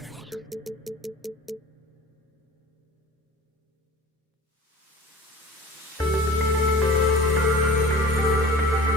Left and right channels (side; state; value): both; normal; correlation 0.42